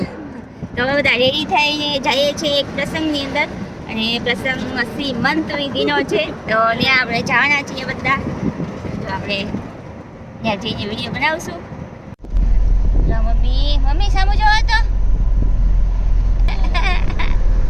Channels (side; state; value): both; identical; correlation 1.00